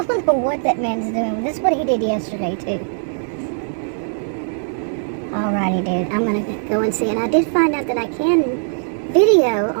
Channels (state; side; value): silent; left; 66 dB below the other